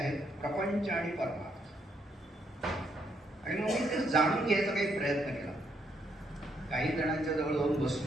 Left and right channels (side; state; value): both; normal; correlation 0.74